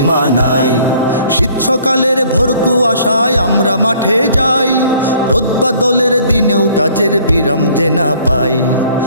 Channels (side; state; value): both; inverted; correlation -0.57